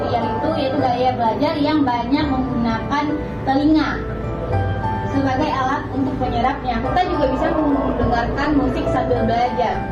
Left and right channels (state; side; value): identical; both; correlation 1.00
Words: itu yaitu gaya belajar yang banyak menggunakan telinga sebagai alat untuk penyerapnya. Kita juga bisa mendengarkan musik sambil belajar